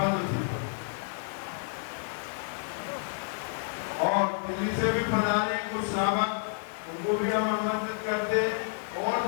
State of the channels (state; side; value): silent; right; digital silence